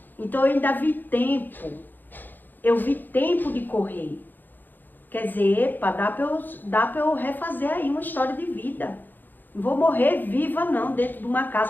Então eu ainda vi tempo. Eu vi tempo de correr. Quer dizer, epa, dá pra eu refazer aí uma história de vida. Não vou morrer viva não, dentro de uma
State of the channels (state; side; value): late; right; 0.089 ms